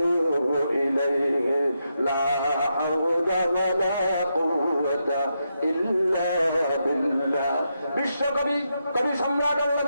ইলাইহি লা হাওলা ওয়া লা কুওয়াতা ইল্লা বিল্লাহ। বিশ্বকবি কবি সম্রাট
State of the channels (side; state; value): both; inverted; correlation -0.84